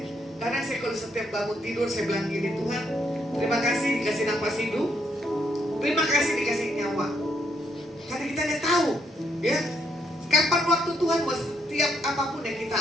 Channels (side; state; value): both; normal; correlation 0.74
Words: Karena saya kalau setiap bangun tidur, saya bilang gini, Tuhan, terima kasih dikasih nafas hidup, terima kasih dikasih nyawa. Karena kita tidak tahu, ya, kapan waktu Tuhan mau setiap apapun yang kita